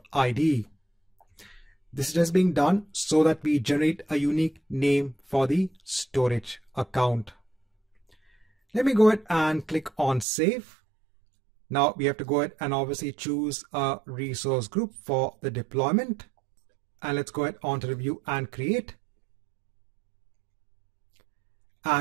ID. This is just being done so that we generate a unique name for the storage account. Let me go ahead and click on save. Now we have to go ahead and obviously choose a resource group for the deployment. And let's go ahead on to review and create.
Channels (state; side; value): drops out; left; at 10.2 s